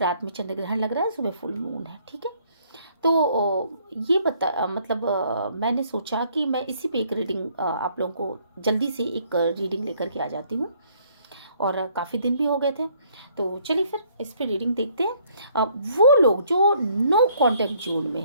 में चंद्र ग्रहण लग रहा है, सुबह फुल मून है। ठीक है, तो ये मैंने सोचा कि मैं इसी पे एक रीडिंग आप लोगों को जल्दी से एक रीडिंग लेकर के आ जाती हूँ, और काफ़ी दिन भी हो गए थे। तो चलिए फिर इस पे रीडिंग देखते हैं। वो लोग जो नो कांटेक्ट जोन में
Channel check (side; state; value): both; inverted; correlation -0.64